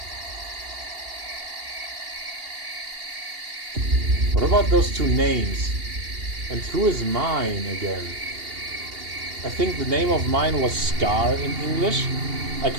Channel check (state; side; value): late; left; 2.8 ms